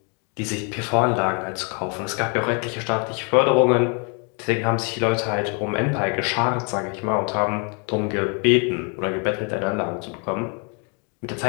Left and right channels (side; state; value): right; quieter; 36.5 dB